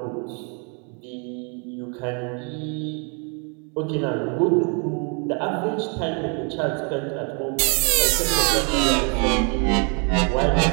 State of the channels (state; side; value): quieter; left; 37.3 dB